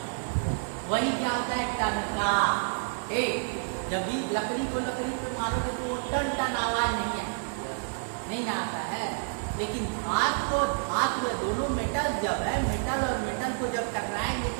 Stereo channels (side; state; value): left; silent; digital silence